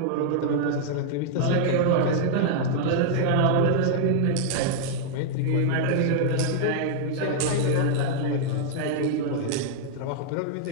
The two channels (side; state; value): both; different; correlation -0.01